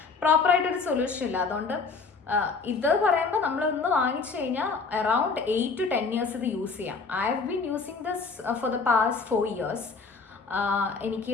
പ്രോപ്പറായിട്ടൊരു സൊല്യൂഷൻ ഇല്ല. അതുകൊണ്ട് ഇത് പറയുമ്പോൾ നമ്മളൊന്ന് വാങ്ങിച്ചു കഴിഞ്ഞാൽ അറൗണ്ട് 8 to 10 years ഇത് യൂസ് ചെയ്യാം. I have been using this for the past 4 years.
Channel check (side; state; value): right; quieter; 4.6 dB